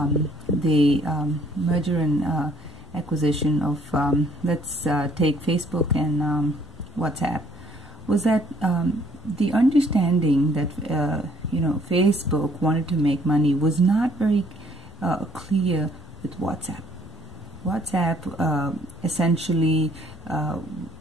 the merger and acquisition of, let's take Facebook and WhatsApp, was that the understanding that Facebook wanted to make money was not very clear with WhatsApp. WhatsApp essentially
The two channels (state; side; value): normal; both; correlation 0.62